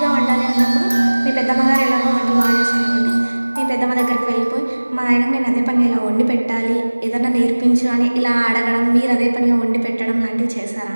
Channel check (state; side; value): inverted; both; correlation -1.00